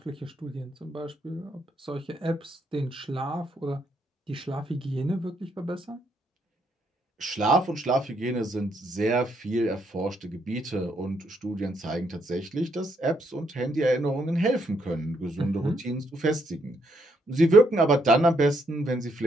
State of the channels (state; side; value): normal; both; correlation 0.74